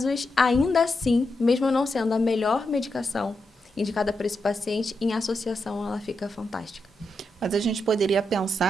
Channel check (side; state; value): both; normal; correlation 0.85